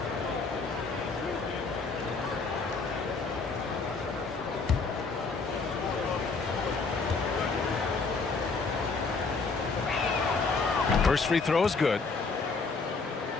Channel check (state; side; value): quieter; right; 4.3 dB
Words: First free throw is good.